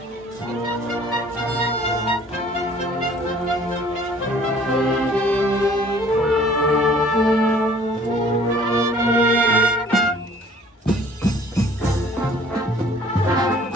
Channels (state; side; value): normal; both; correlation 0.55